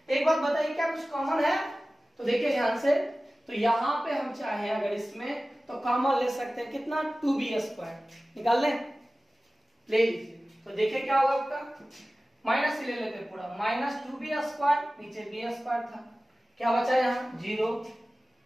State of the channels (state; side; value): normal; both; correlation 0.97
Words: एक बात बताइए क्या कुछ कॉमन है, तो देखिए ध्यान से, तो यहाँ पे हम चाहें अगर इसमें तो कॉमन ले सकते हैं कितना 2b स्क्वायर निकाल लें, ले लीजिए। तो देखिए क्या होगा आपका, माइनस से ले लेते हैं पूरा, माइनस 2b स्क्वायर नीचे b स्क्वायर था, क्या बचा यहाँ 0।